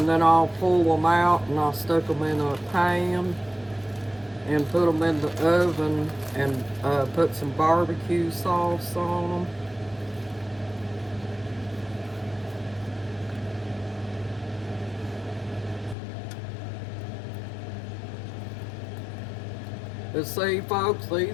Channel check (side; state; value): right; drops out; at 16.0 s